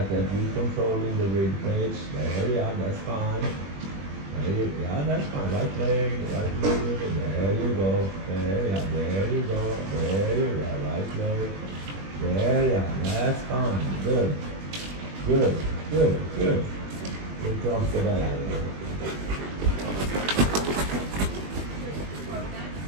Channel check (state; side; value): late; left; 21 ms